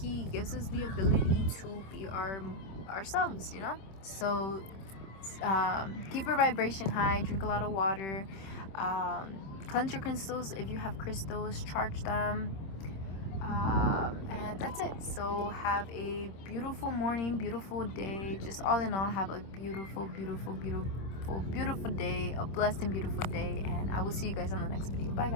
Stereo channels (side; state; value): right; late; 26 ms